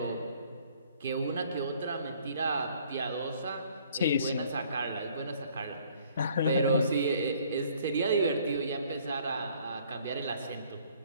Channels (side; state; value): both; inverted; correlation -0.59